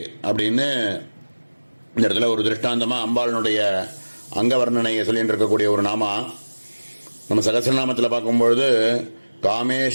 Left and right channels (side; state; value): both; inverted; correlation -1.00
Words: அப்படின்னு இந்த இடத்துல ஒரு திருஷ்டாந்தமாக அம்பாளினுடைய அங்க வர்ணனையை சொல்லிட்டு இருக்கக்கூடிய ஒரு நாமா. நம்ம சகசிரநாமத்தில் பார்க்கும்பொழுது